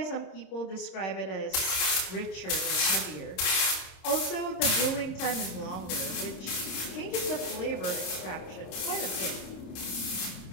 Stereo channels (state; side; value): late; right; 26 ms